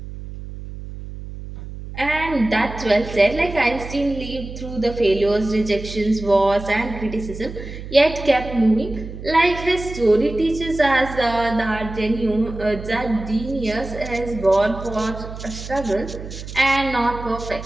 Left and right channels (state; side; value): noise; right; hum, 11 dB below the sound